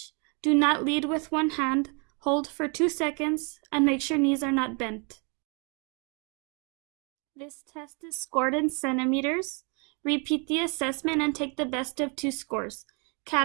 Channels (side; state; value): left; quieter; 34.5 dB